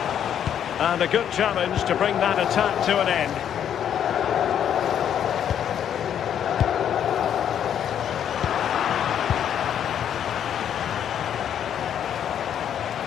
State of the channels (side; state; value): right; quieter; 9.3 dB